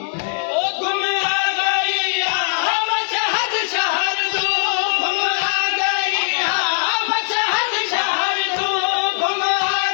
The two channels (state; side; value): silent; right; digital silence